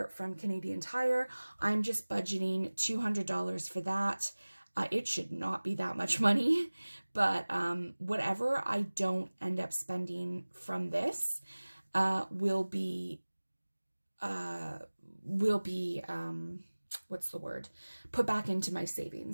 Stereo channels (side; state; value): both; inverted; correlation -1.00